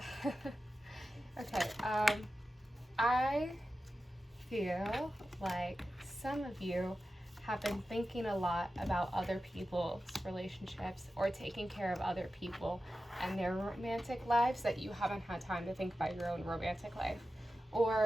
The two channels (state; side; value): normal; both; correlation 0.93